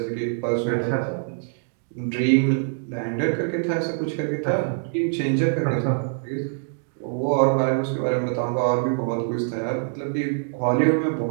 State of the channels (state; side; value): silent; left; digital silence